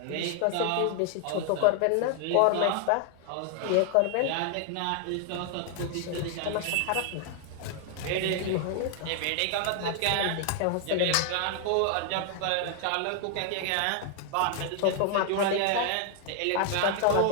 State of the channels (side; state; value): both; different; correlation 0.00